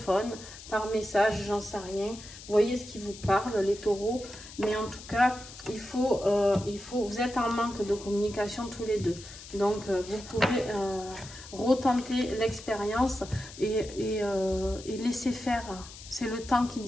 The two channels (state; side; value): noise; left; hiss, 15 dB below the sound